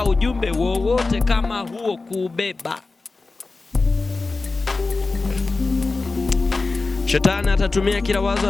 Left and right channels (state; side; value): quieter; right; 3.7 dB